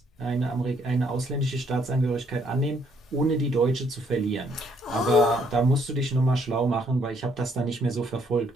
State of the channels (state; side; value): normal; both; correlation 0.68